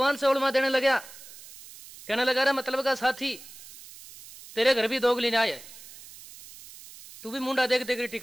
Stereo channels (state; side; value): noise; right; hiss, 18 dB below the sound